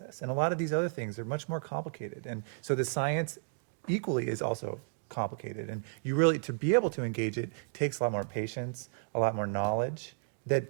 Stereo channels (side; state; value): left; silent; digital silence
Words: And a lot of these other things are much more complicated. And so the science equally is also complicated. And you really, to be able to engage it, takes a lot more patience, a lot more knowledge, that,